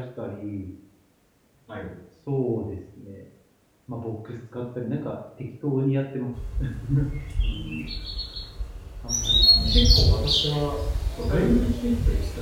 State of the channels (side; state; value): both; identical; correlation 1.00